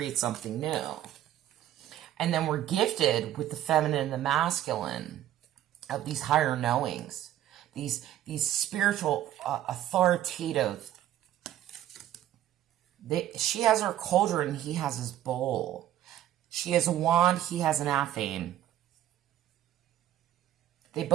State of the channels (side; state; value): left; quieter; 12.6 dB